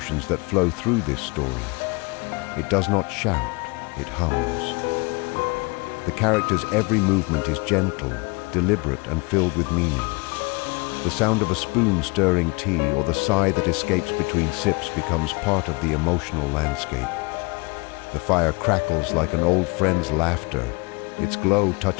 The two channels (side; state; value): right; quieter; 27.9 dB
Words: that flow through this story. It does not shout, it hums. The character's every movement is gentle, deliberate, and filled with meaning. The sound of a spoon stirring tea or the sigh that escapes between sips becomes part of the emotional landscape. The fire crackles like an old friend's laughter, its glow